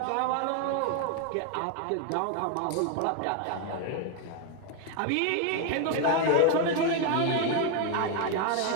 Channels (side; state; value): both; different; correlation 0.01